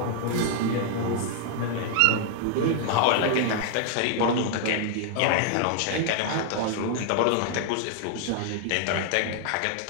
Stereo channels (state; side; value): different; both; correlation 0.00